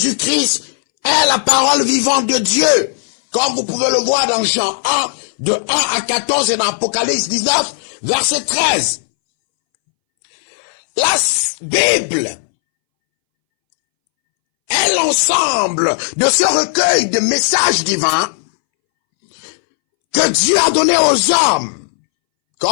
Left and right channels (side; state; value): right; silent; 67 dB below the other